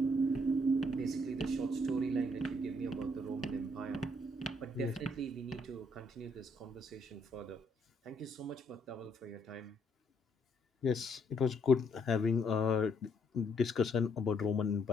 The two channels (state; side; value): normal; both; correlation 0.70